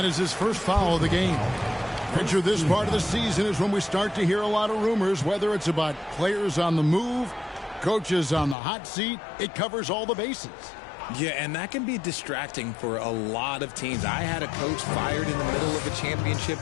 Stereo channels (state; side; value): drops out; right; at 8.6 s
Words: is his first foul of the game. Picture this part of the season is when we start to hear a lot of rumors, whether it's about players on the move, coaches on the hot seat. It covers all the bases. Yeah, and that can be distracting for a lot of teams. I had a coach fired in the middle of a